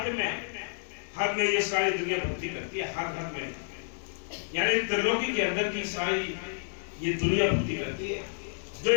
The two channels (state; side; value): silent; right; digital silence